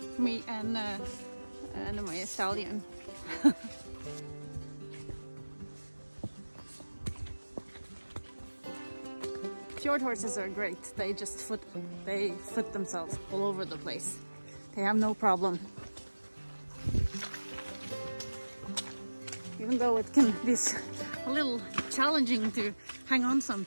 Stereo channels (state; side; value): inverted; both; correlation -1.00